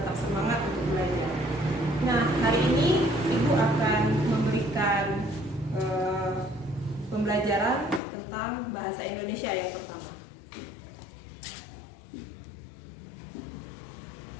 semangat untuk belajar. Nah, hari ini Ibu akan memberikan pembelajaran tentang bahasa Indonesia yang pertama.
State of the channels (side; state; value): right; drops out; at 8.0 s